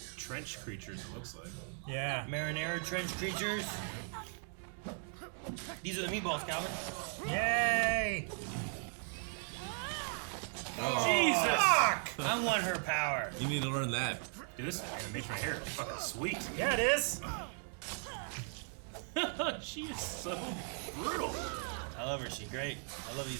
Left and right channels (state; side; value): silent; left; 53 dB below the other